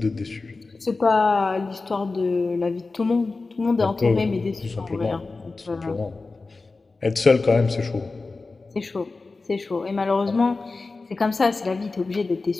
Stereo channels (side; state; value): right; quieter; 3.7 dB